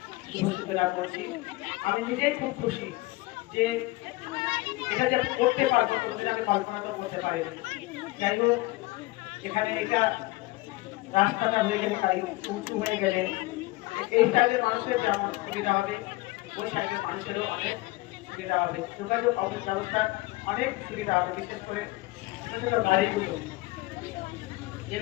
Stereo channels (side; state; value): right; quieter; 20.7 dB